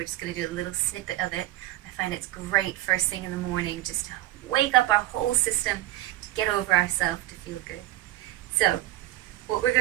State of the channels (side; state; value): left; quieter; 15.8 dB